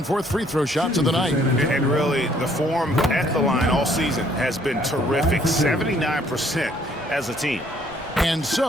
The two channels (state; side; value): normal; both; correlation 0.64